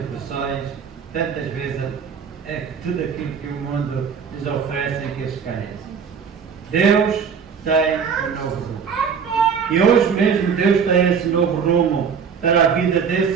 tantas vezes é tudo aquilo que o mundo lhes oferece em que eles caem. Deus tem um novo rumo. E hoje mesmo Deus tem esse novo rumo para a vida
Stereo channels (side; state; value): left; quieter; 6.6 dB